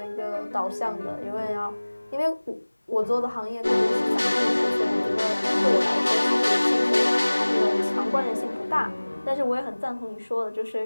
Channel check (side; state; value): both; inverted; correlation -1.00